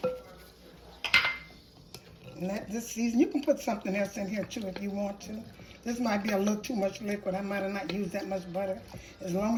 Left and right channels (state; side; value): identical; both; correlation 1.00